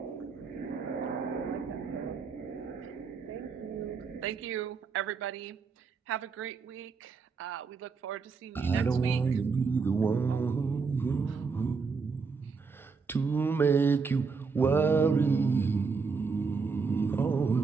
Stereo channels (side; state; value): left; quieter; 5.0 dB